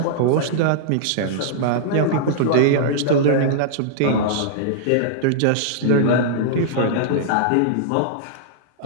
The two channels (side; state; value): both; different; correlation -0.02